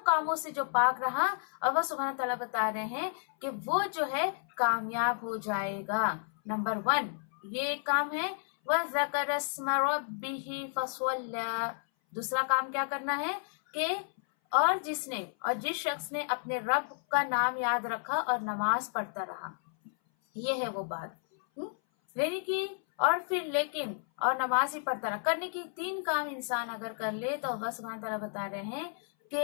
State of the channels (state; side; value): silent; right; 57 dB below the other